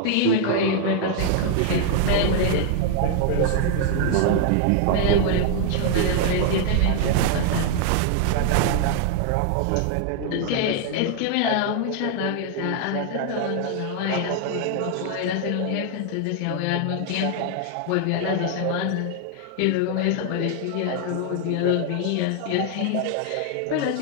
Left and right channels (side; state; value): both; different; correlation 0.00